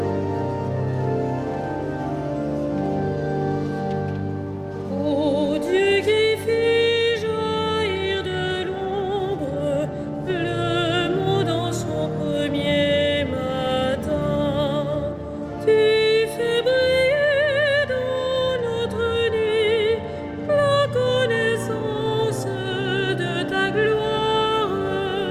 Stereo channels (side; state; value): both; identical; correlation 1.00